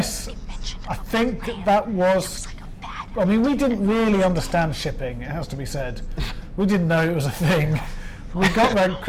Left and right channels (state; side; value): identical; both; correlation 1.00